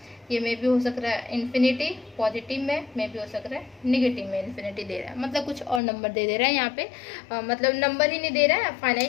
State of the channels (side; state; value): right; drops out; at 5.8 s